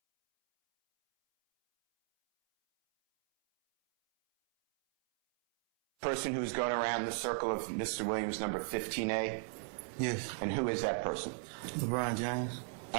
Person who's going around the circle of Mr. Williams, number 15A? Yes. And who is that person? LeBron James.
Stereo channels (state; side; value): silent; left; 54 dB below the other